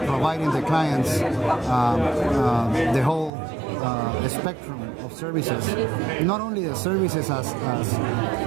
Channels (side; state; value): left; drops out; at 3.3 s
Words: the clients the whole spectrum of services, not only the services as